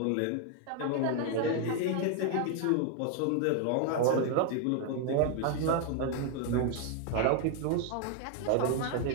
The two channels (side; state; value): both; different; correlation 0.00